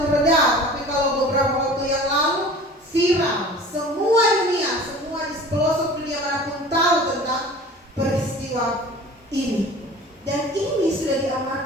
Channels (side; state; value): both; normal; correlation 0.42